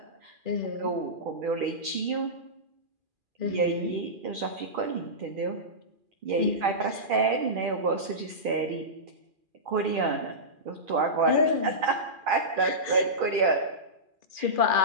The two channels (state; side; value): late; left; 2.4 ms